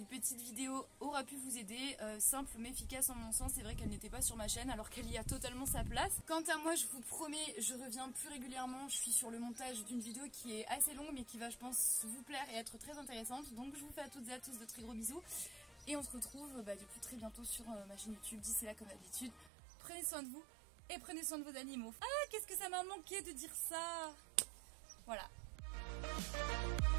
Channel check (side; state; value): left; drops out; at 19.5 s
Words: petite vidéo aura pu vous aider, simple mais efficace en mon sens. C'est vrai qu'elle n'était pas sur ma chaîne alors qu'elle y a totalement sa place. Quant à moi, je vous promets, je reviens plus régulièrement. Je suis sur le montage d'une vidéo qui est assez longue mais qui va, je pense, vous plaire et être très intéressante. Donc je vous fais à toutes et à tous de très gros bisous. Et on se retrouve du coup très bientôt sur ma chaîne YouTube. D'ici là, comme d'habitude, prenez soin de vous et prenez soin de vos animaux. Ah, qu'est-ce que ça m'a manqué de dire ça. Voilà. Thank